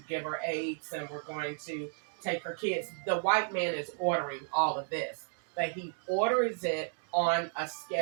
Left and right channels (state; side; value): silent; left; 56 dB below the other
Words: give her AIDS, and we're going to take her kids. The white man is ordering all of this, but he orders it on a